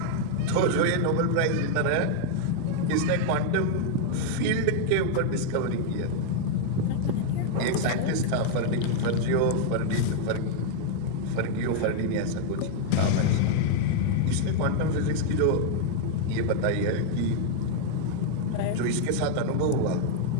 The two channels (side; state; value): both; different; correlation 0.00